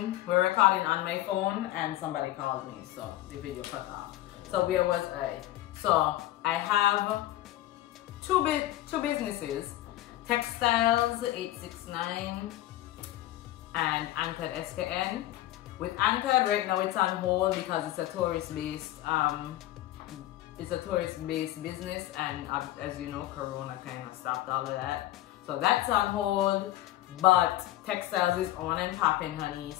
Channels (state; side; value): quieter; right; 15.5 dB